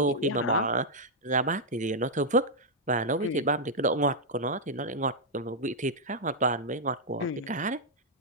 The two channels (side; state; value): both; normal; correlation -0.05